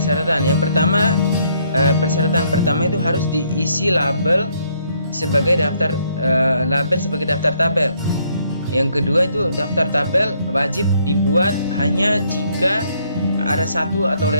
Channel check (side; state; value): both; inverted; correlation -0.69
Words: Yang pertama, persyaratan pertama itu harus diisi label sebagai daftar tabel. Yang kedua itu daftar tabel wajib dibuat hanya jika ada satu atau